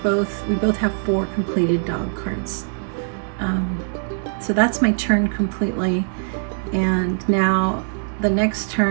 both have 4 completed dog cards. So that's my turn completely. And now the next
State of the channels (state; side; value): silent; left; digital silence